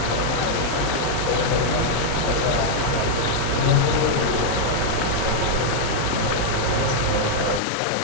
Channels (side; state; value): both; different; correlation -0.01